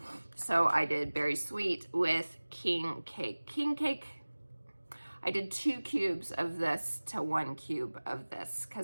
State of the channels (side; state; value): both; inverted; correlation -1.00